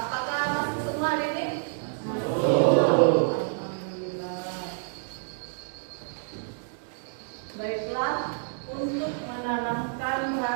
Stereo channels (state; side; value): silent; left; digital silence